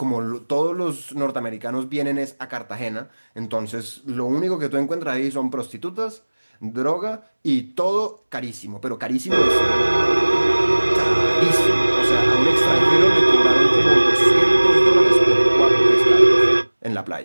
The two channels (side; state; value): both; inverted; correlation -1.00